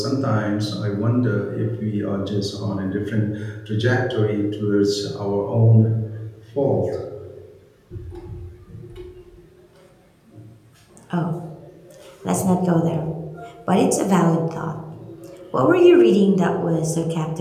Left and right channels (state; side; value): identical; both; correlation 1.00